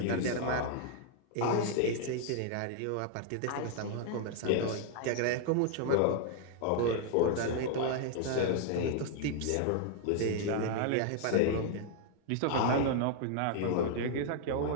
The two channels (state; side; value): different; both; correlation 0.00